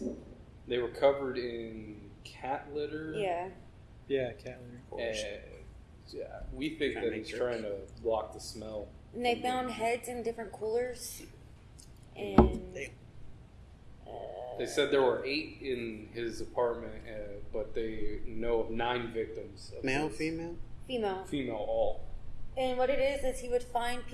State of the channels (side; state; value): both; identical; correlation 1.00